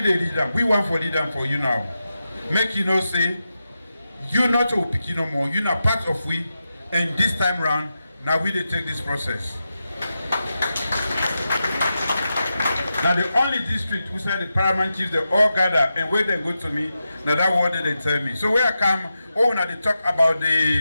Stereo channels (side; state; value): both; inverted; correlation -0.90